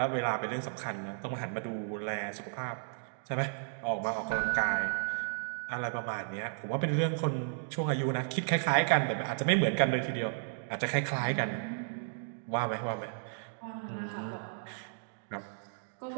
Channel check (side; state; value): left; silent; digital silence